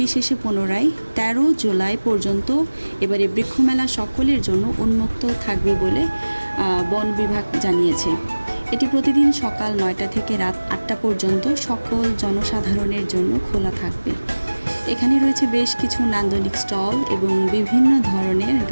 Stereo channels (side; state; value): both; inverted; correlation -1.00